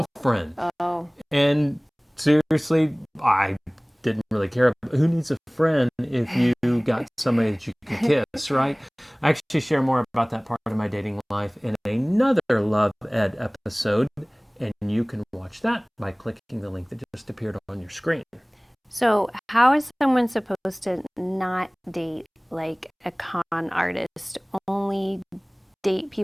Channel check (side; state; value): both; identical; correlation 1.00